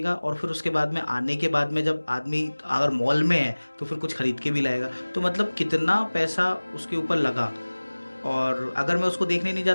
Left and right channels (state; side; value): inverted; both; correlation -1.00